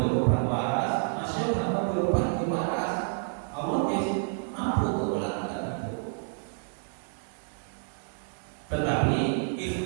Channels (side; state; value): left; silent; digital silence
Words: obat waras, masih gak ngombe obat di waras. Allah mampu untuk melakukan itu. Tetapi